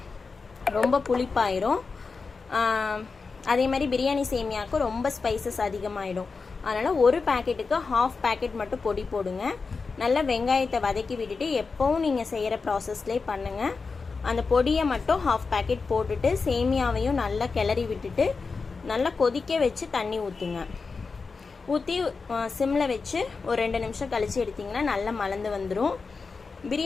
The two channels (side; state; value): right; quieter; 4.6 dB